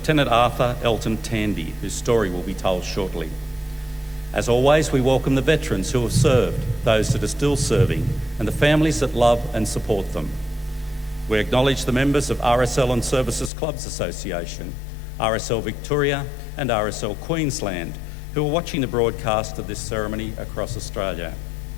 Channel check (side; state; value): right; drops out; at 13.5 s